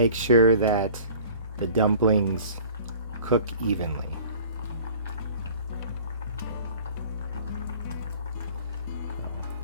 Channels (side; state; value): both; inverted; correlation -0.47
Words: sure that the dumplings cook evenly.